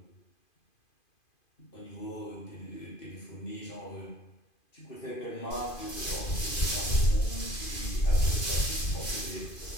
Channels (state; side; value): late; right; 2.5 ms